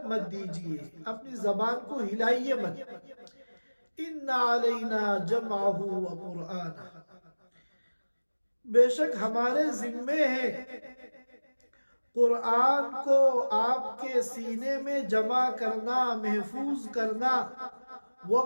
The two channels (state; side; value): inverted; both; correlation -1.00